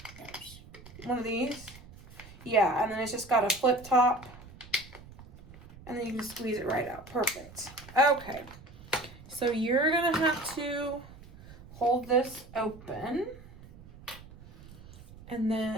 One of these? Yeah, and then it's just got a flip top. And then you can squeeze it right out. Perfect. Okay. So you're going to have to hold this open. And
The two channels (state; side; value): noise; right; rumble, 19 dB below the sound